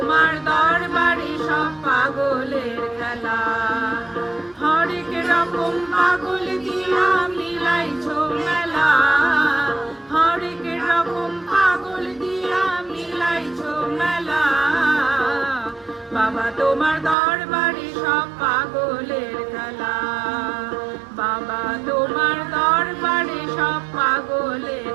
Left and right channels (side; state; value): left; drops out; at 17.2 s